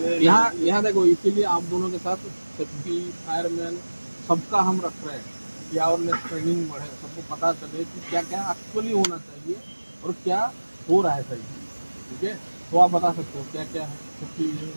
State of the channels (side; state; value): both; inverted; correlation -1.00